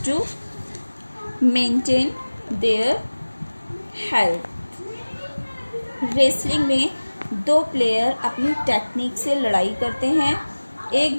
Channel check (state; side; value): inverted; both; correlation -1.00